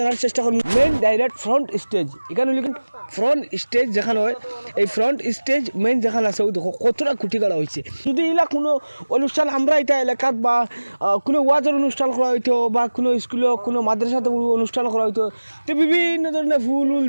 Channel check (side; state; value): both; inverted; correlation -1.00